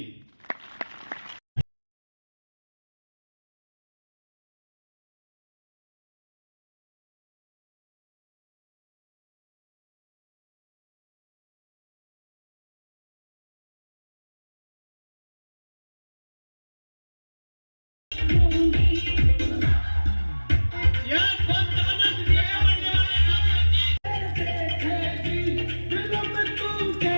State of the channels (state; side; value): inverted; both; correlation -1.00